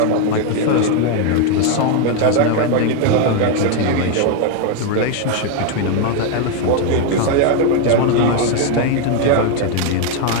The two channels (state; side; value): different; both; correlation 0.01